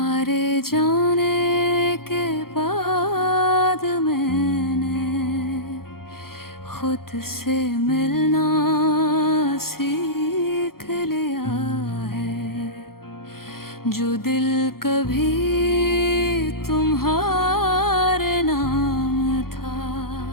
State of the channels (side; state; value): right; late; 0.93 ms